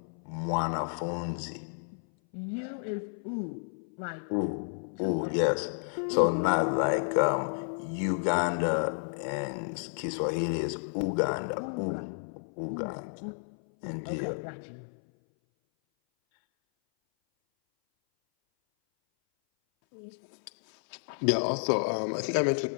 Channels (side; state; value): right; silent; 57 dB below the other